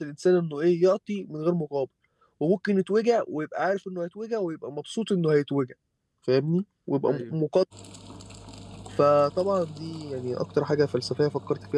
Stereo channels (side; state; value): both; identical; correlation 1.00